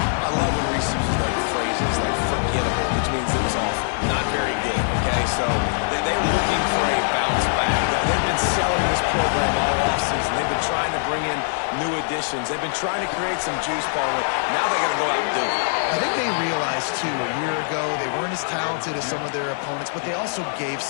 love when Reese uses like phrases like forgettable, which means it was awful, not very good, okay? So they're looking for a bounce back. They've been selling this program all offseason. They've been trying to bring in new additions. They've been trying to create some juice, Paul. Now they got to go out and do it. I think they realized, too, a year ago they weren't as talented as some of their opponents, but they also gave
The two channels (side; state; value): right; silent; digital silence